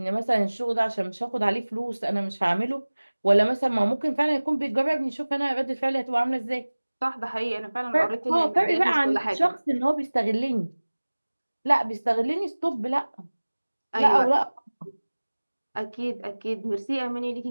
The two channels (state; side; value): inverted; both; correlation -1.00